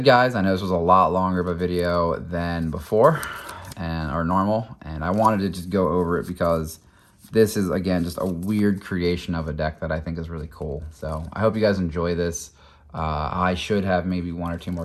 guys, I know this was a lot longer of a video than before or normal, and I wanted to just go over it because this is, again, just a weird creation of a deck that I think is really cool. So I hope you guys enjoy this. I should have maybe 1 or 2 more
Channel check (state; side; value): identical; both; correlation 1.00